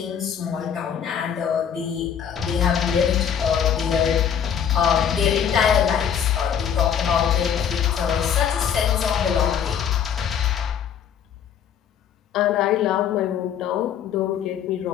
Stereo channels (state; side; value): quieter; right; 8.4 dB